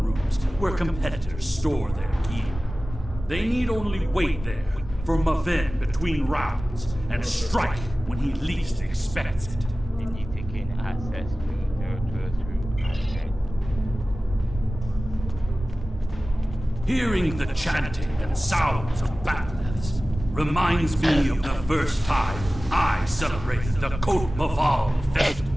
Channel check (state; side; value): normal; both; correlation 0.96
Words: where competitors store their gear. They need only wait there for Maven between rounds and strike when he least expects it. They need to gain access to their through. Hearing the chanting and sounds of bat'leths reminds me of the first time I celebrated the Côte Maval festival.